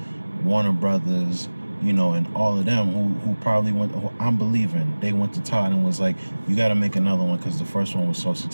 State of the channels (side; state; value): both; inverted; correlation -1.00